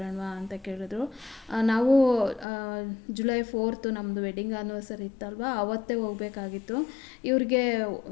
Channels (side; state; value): right; drops out; at 2.5 s